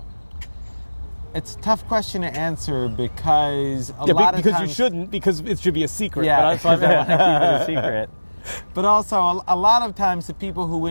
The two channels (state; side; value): inverted; both; correlation -1.00